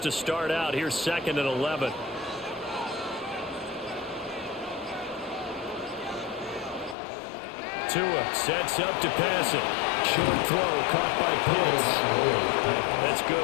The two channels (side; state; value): right; drops out; at 7.0 s